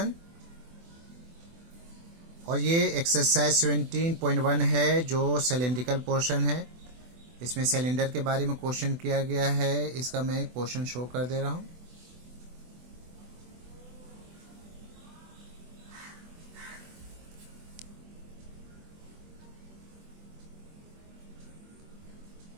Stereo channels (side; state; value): left; late; 24 ms